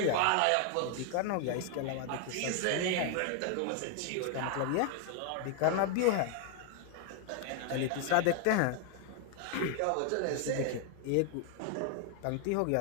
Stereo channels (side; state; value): both; different; correlation 0.00